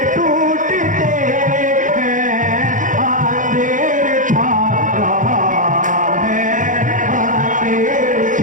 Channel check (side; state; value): left; late; 0.38 ms